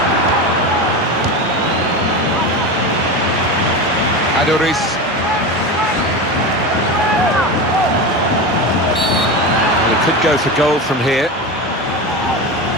Aduriz. Well, it could go for goal from here.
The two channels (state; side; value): normal; both; correlation 0.23